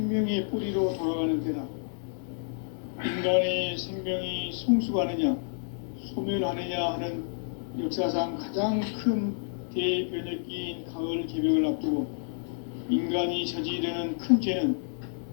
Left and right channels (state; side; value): silent; right; digital silence